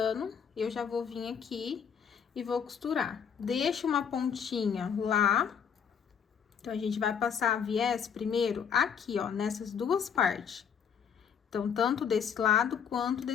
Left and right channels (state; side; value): quieter; right; 7.4 dB